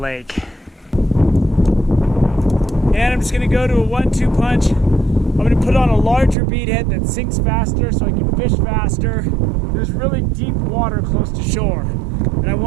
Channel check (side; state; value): left; drops out; at 6.4 s